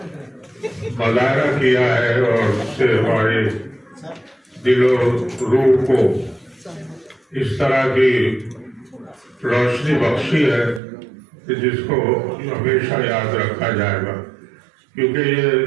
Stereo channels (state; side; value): drops out; left; at 10.8 s